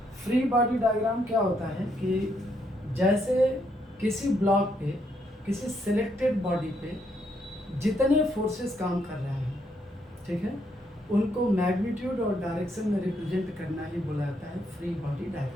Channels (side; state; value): both; normal; correlation 0.75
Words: फ्री बॉडी डायग्राम क्या होता है कि जैसे किसी ब्लॉक पे, किसी सिलेक्टेड बॉडी पे जितने फोर्सेस काम कर रहे हैं, ठीक है, उनको मैग्नीट्यूड और डायरेक्शन में रिप्रेजेंट करना ही बोला जाता है फ्री बॉडी